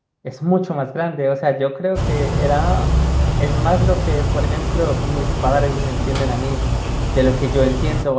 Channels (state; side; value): identical; both; correlation 1.00